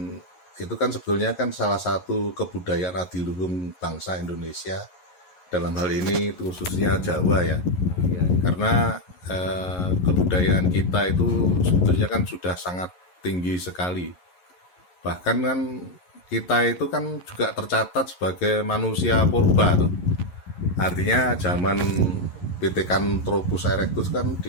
itu, kan sebetulnya kan salah satu kebudayaan adiluhung bangsa Indonesia, dalam hal ini khususnya Jawa ya. Karena kebudayaan kita itu sebetulnya kan sudah sangat tinggi sekali. Bahkan kan kita itu kan juga tercatat sebagai manusia purba tuh. Artinya zaman Pithecanthropus erectus kan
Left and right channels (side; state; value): right; late; 11 ms